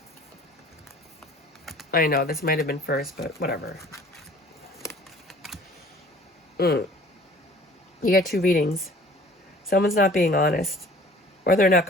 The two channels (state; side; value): normal; both; correlation 0.50